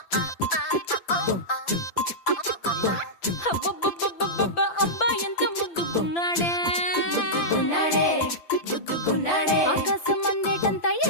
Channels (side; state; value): right; late; 5.9 ms